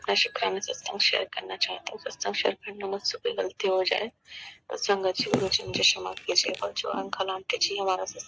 शुक्राना सत्संग शेयर करना चाहती हूँ। सत्संग शेयर करना मुझसे कोई गलती हो जाए तो संगत जी, गुरु जी मुझे क्षमा कीजिएगा। जो अंकल आंटी जी हमारा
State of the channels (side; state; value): both; identical; correlation 1.00